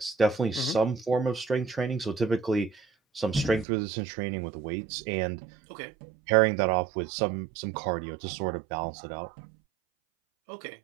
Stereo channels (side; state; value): left; drops out; at 3.7 s